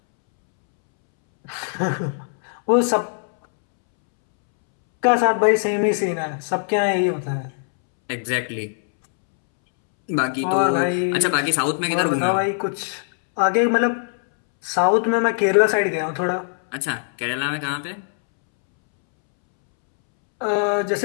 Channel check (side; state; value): right; silent; 65 dB below the other